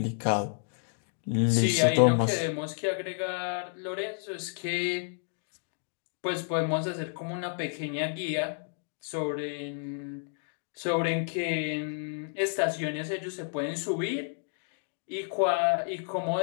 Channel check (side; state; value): right; silent; 57 dB below the other